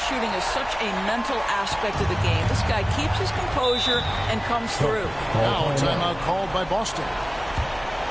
is such a mental aspect of the game. This guy keeps his composure and comes through. Now a timeout called by Boston.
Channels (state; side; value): noise; right; hum, 19 dB below the sound